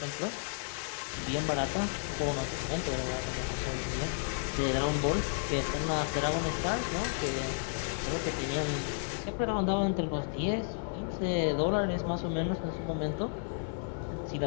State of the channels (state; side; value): silent; right; digital silence